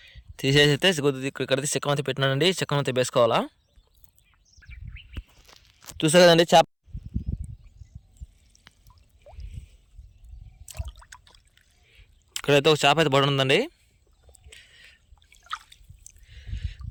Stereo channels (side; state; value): both; identical; correlation 1.00